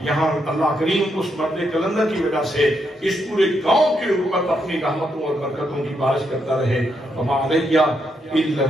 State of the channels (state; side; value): normal; both; correlation 0.79